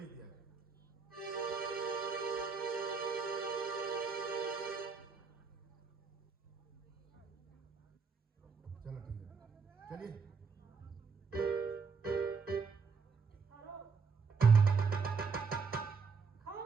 दिया। चलो ठीक है, चलिए।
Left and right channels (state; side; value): quieter; left; 5.2 dB